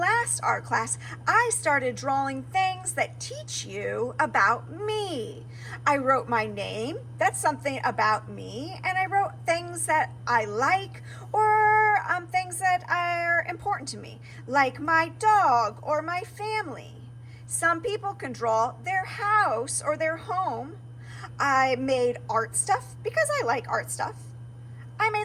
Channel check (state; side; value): identical; both; correlation 1.00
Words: art class, I started drawing things that teach you about me. I wrote my name, that's something about me, and I wrote things that I like or things that are important to me, like my dog or my family. Some people can draw their house or their home. I made art stuff because I like art stuff. I